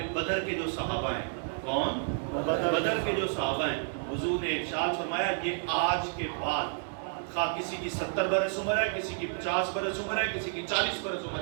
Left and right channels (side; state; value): left; silent; digital silence